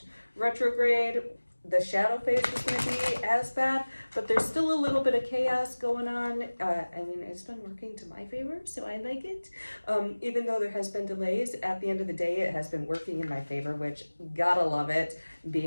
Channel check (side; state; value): both; inverted; correlation -1.00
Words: retrograde the shadow phase was going to be as bad, but there's still a little bit of chaos going on. I mean, it's been working to my favor, so I like it. Even though there has been delays, at the end of the day, it has been working in my favor, which gotta love it,